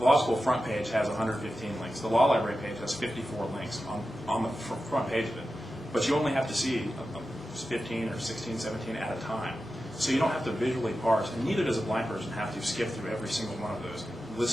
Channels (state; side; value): normal; both; correlation 0.92